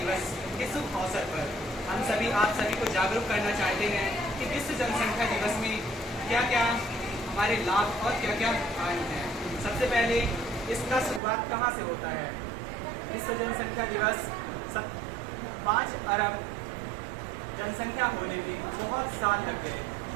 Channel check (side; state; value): left; drops out; at 11.2 s